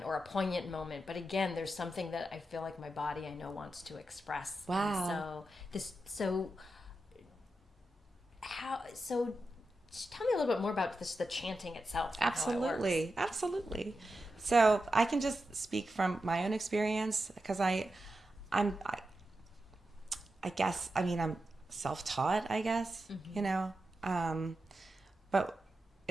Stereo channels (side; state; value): both; normal; correlation 0.89